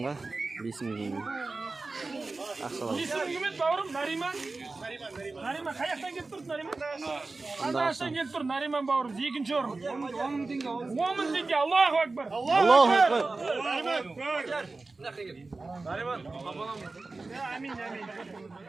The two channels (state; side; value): quieter; left; 3.6 dB